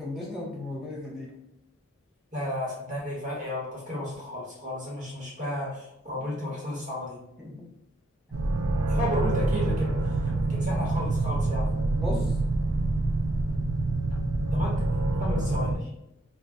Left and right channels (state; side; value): normal; both; correlation 0.75